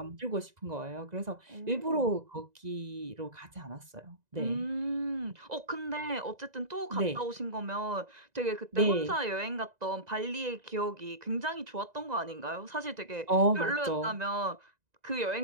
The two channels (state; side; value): late; left; 1.9 ms